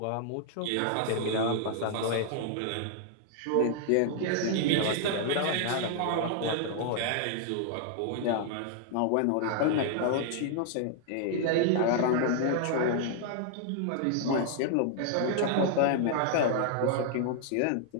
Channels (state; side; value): different; both; correlation 0.00